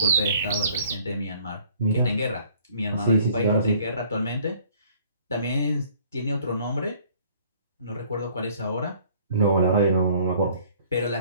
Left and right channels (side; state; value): both; inverted; correlation -0.57